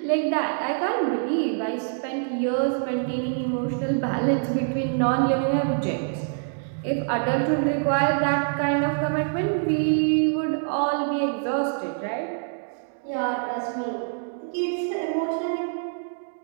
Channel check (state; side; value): silent; left; digital silence